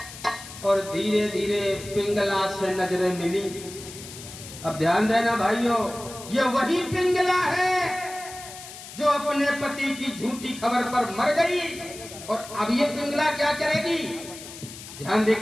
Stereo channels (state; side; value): noise; left; hiss, 14 dB below the sound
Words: और धीरे धीरे पिंगला से नजरें मिली। अब ध्यान देना भाइयों, ये वही पिंगला है जो अपने पति की झूठी खबर पर मर गई, और अब ये पिंगला क्या करेगी? ध्यान